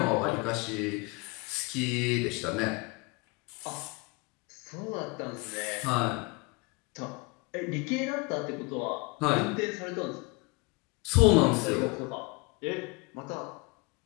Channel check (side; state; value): right; quieter; 27.6 dB